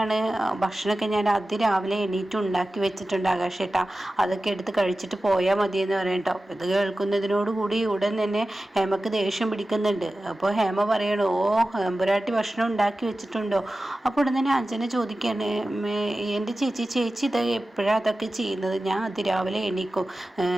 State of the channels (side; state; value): both; normal; correlation 0.95